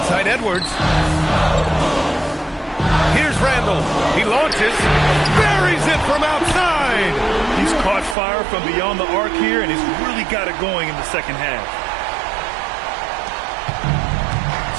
Edwards. Here's Randall. He launches. Buries it from outside. He's caught fire from beyond the arc here, and he's really got it going in the second half.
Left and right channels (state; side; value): drops out; left; at 8.2 s